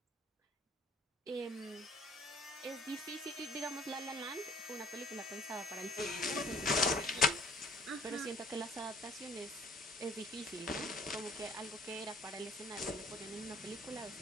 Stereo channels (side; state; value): both; normal; correlation 0.56